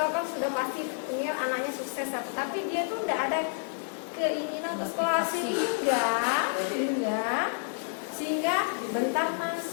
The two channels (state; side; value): silent; right; 58 dB below the other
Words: kan sudah pasti ingin anaknya sukses, tapi dia tuh nggak ada keinginan untuk sekolah sehingga bentar